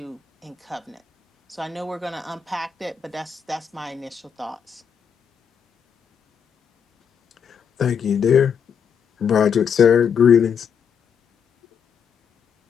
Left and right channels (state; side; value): quieter; right; 7.2 dB